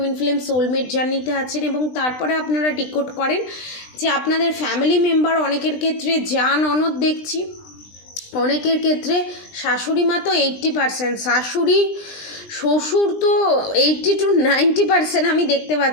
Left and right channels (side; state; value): right; late; 20 ms